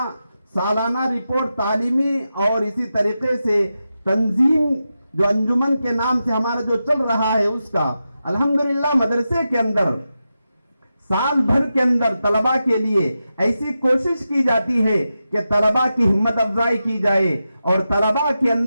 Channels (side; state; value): both; inverted; correlation -0.90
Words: سالانہ رپورٹ تعلیمی، اور اسی طریقے سے تنظیم جو انجمن کے نام سے ہمارا جو چل رہا ہے اس کا الحمدللہ مدرسے کے اندر سال بھر کے اندر طلباء کے لیے ایسی کوشش کی جاتی ہے کہ طلباء کی ہمت افزائی کی جائے اور طلباء کے